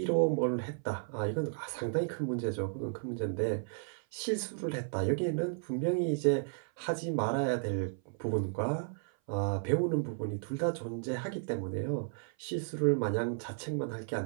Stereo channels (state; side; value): silent; left; 55 dB below the other